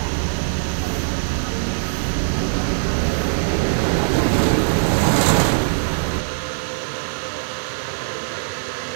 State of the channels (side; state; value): left; silent; 59 dB below the other